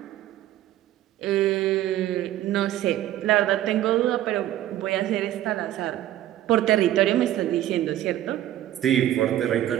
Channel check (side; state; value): left; quieter; 13.2 dB